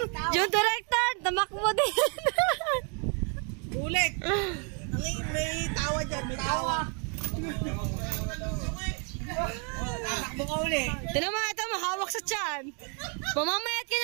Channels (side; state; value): left; quieter; 37.9 dB